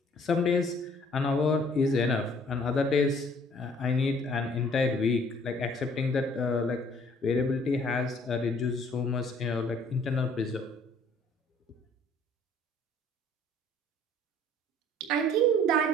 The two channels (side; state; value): both; normal; correlation 0.57